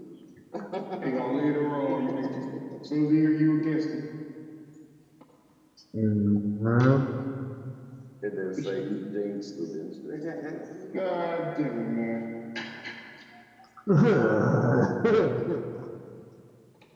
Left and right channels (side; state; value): both; identical; correlation 1.00